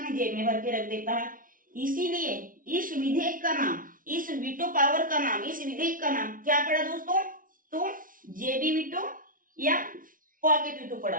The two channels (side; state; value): left; late; 0.39 ms